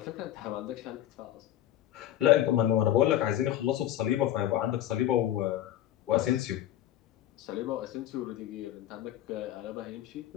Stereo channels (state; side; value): quieter; right; 12.5 dB